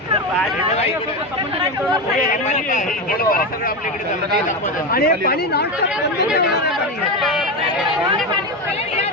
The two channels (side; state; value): both; normal; correlation 0.16